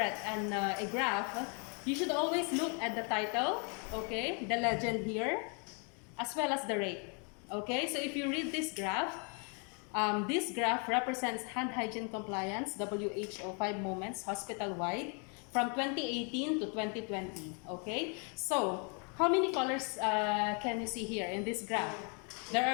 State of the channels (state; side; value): quieter; right; 37.3 dB